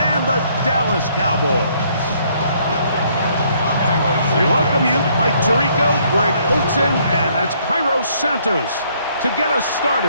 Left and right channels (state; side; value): inverted; both; correlation -0.66